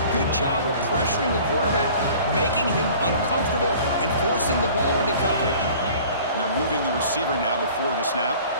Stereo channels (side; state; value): both; inverted; correlation -0.47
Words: Good job of pressuring the quarterback, making him uncomfortable, and forcing the ball into coverage. And they're moving the receiver now before the snap.